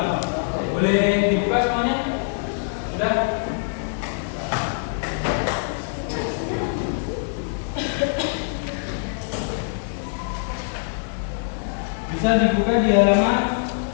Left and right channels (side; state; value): right; silent; digital silence